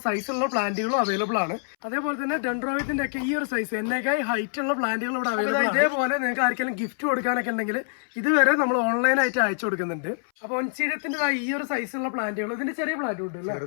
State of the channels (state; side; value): silent; right; 61 dB below the other